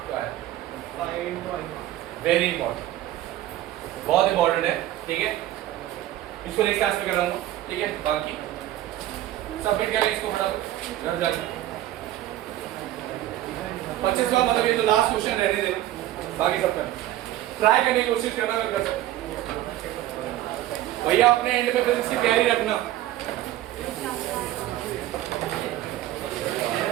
क्या है? वेरी इंपॉर्टेंट, बहुत इंपॉर्टेंट है, ठीक है? इसको नेक्स्ट क्लास में कराऊंगा, ठीक है? बाकी सबमिट कर ले इसको फटाफट घर जाके। 25 का मतलब ये तो लास्ट क्वेश्चन रहने देना, बाकी सब करना, ट्राई करने की कोशिश करना अगर कर सकते। भैया अपने एंड पे फिजिक्स की तैयारी रखना।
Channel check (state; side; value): quieter; left; 14.1 dB